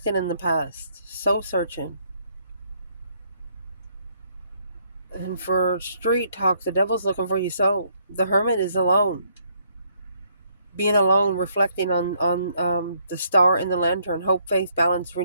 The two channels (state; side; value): inverted; both; correlation -0.69